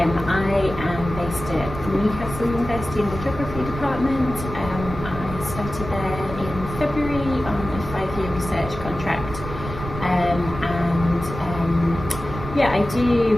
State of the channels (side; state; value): right; noise; rumble, 9 dB below the sound